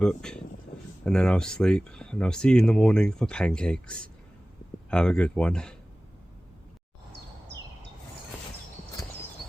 and then I'll sleep, and I'll see you in the morning for pancakes. Have a good one.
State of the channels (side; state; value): both; normal; correlation 0.97